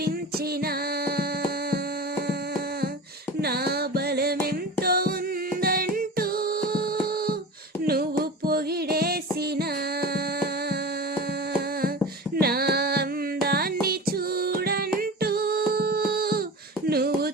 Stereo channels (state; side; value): normal; both; correlation 0.31